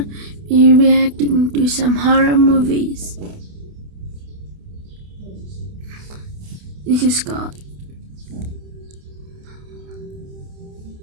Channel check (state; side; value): late; left; 28 ms